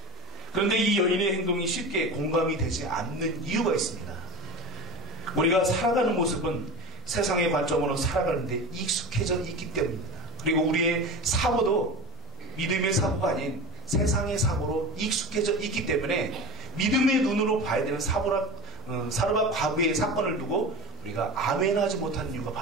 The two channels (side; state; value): both; normal; correlation 0.30